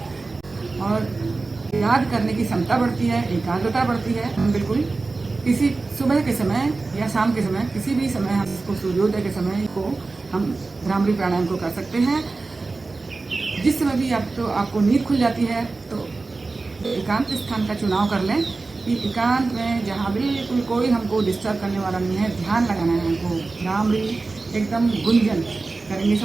और याद करने की क्षमता बढ़ती है, एकाग्रता बढ़ती है। हम बिल्कुल किसी सुबह के समय या शाम के समय, किसी भी समय हम इसको सूर्योदय के समय को हम भ्रामरी प्राणायाम को कर सकते हैं। जिस समय भी आपको नींद खुल जाती है तो एकांत स्थान का चुनाव कर लें कि एकांत में जहाँ बिल्कुल कोई हमको डिस्टर्ब करने वाला नहीं है, ध्यान लगाना है हमको। भ्रामरी एकदम गुंजन करेंगे।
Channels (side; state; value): left; quieter; 3.7 dB